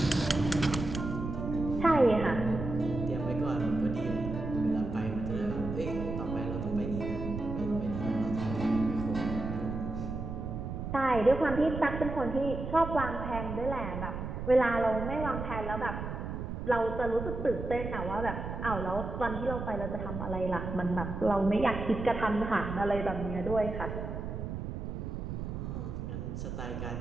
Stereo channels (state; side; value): noise; right; rumble, 5 dB below the sound